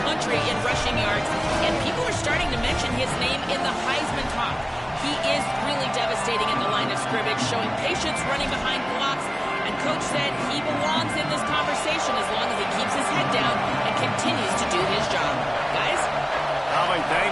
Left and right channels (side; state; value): both; identical; correlation 1.00